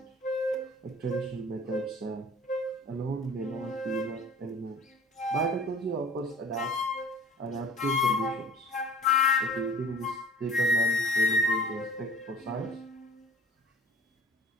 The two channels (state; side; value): normal; both; correlation 0.47